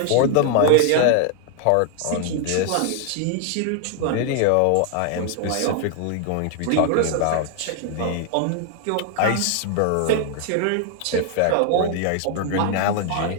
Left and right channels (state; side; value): different; both; correlation 0.00